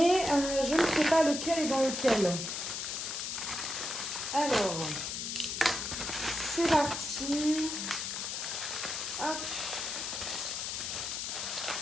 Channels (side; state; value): left; noise; hiss, 3 dB below the sound